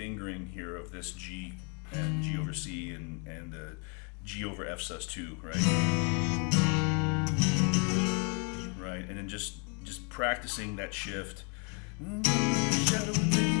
here of this G and G over C and the G over F sus2, right? Right, and then just practicing that shift.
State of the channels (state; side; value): quieter; right; 37.0 dB